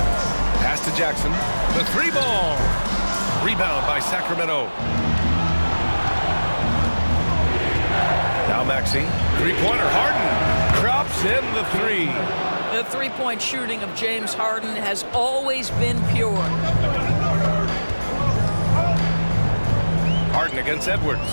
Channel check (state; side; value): inverted; both; correlation -1.00